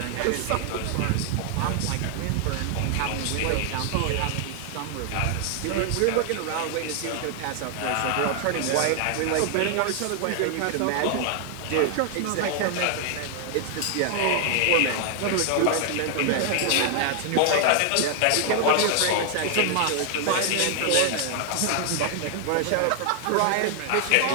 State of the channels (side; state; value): both; different; correlation 0.00